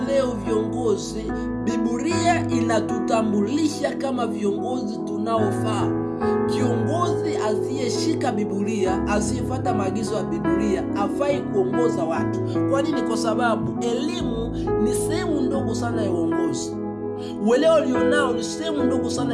leo viongozi, Biblia inatutambulisha kama viongozi tunaofaa. Kiongozi asiyeshika Biblia, asiyefuata maagizo ya Biblia, hafai kuongoza watu. Kwa nini? Kwa sababu elimu ni sehemu ndogo sana ya uongozi. Uelewa ulionao ni sehemu ndogo sana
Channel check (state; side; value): identical; both; correlation 1.00